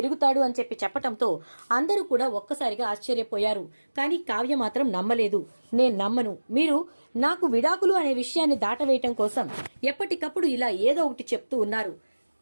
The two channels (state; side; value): inverted; both; correlation -1.00